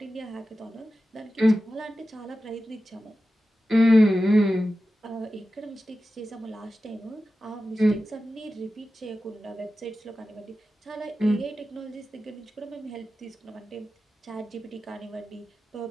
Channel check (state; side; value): normal; both; correlation 0.93